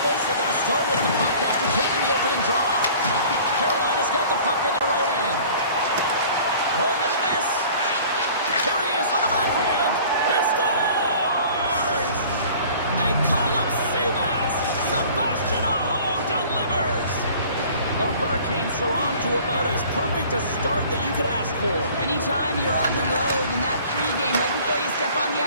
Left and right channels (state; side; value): inverted; both; correlation -0.48